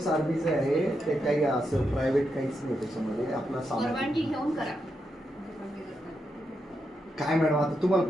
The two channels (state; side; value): normal; both; correlation 0.84